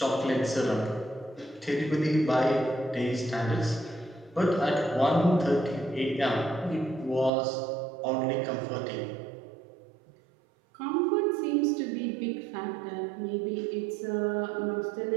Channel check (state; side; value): drops out; left; at 7.3 s